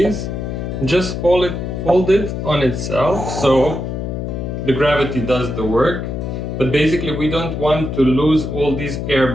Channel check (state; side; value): noise; left; hum, 4 dB below the sound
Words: Just fold it on itself, so the gravity does the work. But basically we don't want to lose all these air